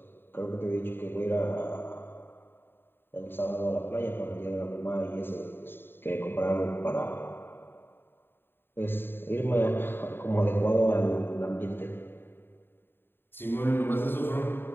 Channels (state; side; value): late; right; 0.10 ms